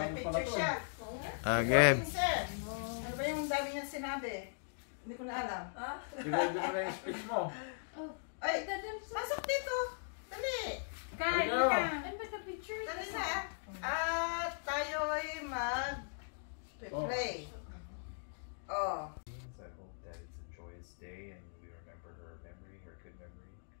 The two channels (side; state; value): right; silent; digital silence